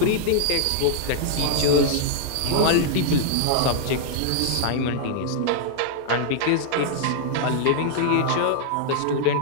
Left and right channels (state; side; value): different; both; correlation 0.00